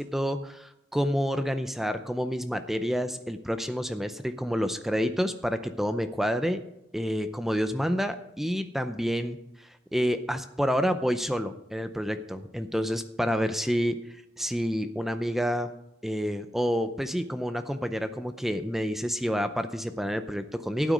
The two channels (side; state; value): both; normal; correlation 0.90